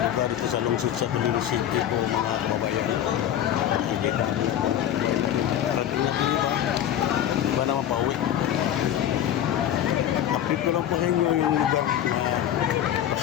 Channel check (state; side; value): quieter; right; 10.7 dB